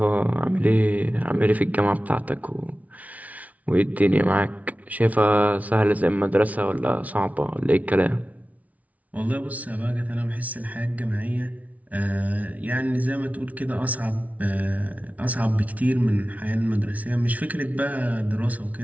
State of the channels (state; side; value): late; left; 0.070 ms